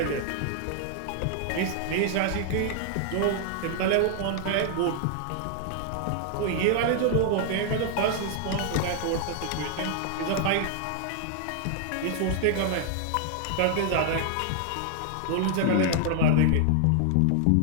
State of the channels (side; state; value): both; different; correlation 0.00